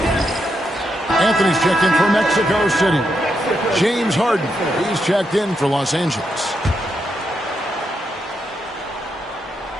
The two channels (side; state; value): both; normal; correlation 0.82